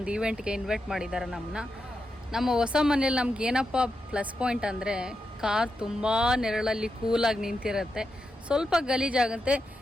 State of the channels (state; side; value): normal; both; correlation 0.87